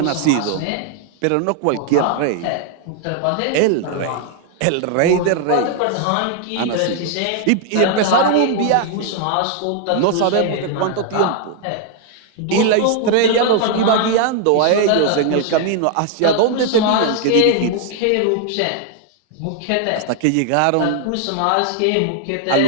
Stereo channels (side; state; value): both; different; correlation 0.00